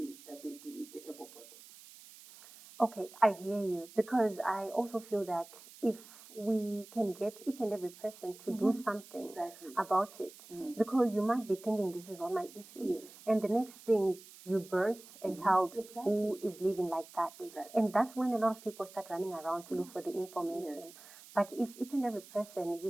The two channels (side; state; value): right; noise; hiss, 19 dB below the sound